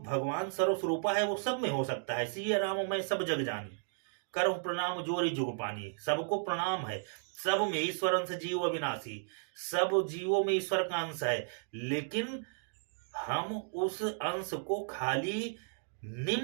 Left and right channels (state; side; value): silent; left; digital silence